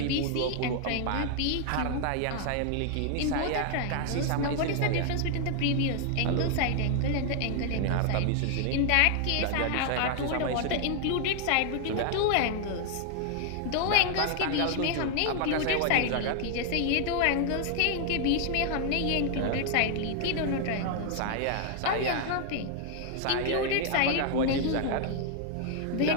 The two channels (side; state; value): both; different; correlation 0.00